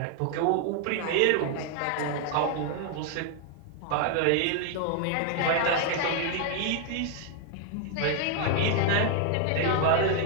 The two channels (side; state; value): both; different; correlation 0.00